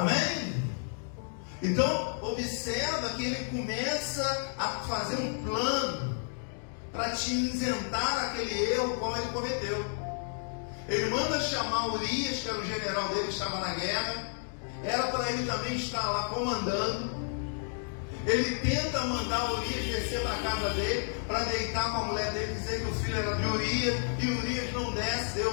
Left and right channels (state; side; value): silent; right; 57 dB below the other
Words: Então observa que ele começa a fazer um plano para te isentar aquele erro como ele cometeu. Ele manda chamar Urias, que era o general dele que estava na guerra. Era para ele também estar lá comandando. Ele tenta mandar Urias descer para a casa dele, para deitar com a mulher dele, dizer que o filho era de Urias, e Urias não desce,